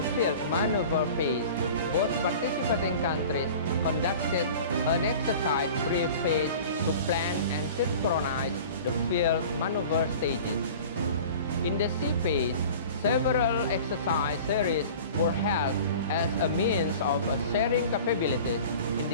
field maneuver phase, both participating countries conducted an exercise brief phase to plan and synchronize the field maneuver stages. In the sea phase, several exercise series were held as a means of sharing capabilities in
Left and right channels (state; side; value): inverted; both; correlation -0.40